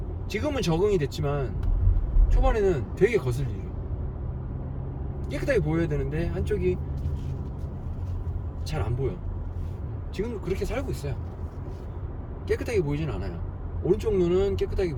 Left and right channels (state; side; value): identical; both; correlation 1.00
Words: 지금은 적응이 됐지만 초반에는 되게 거슬리죠. 깨끗하게 보여야 되는데 한쪽이 잘 안 보여. 지금도 그렇게 살고 있어요. 깨끗하게 보이진 않아요. 오른쪽 눈은 깨끗하게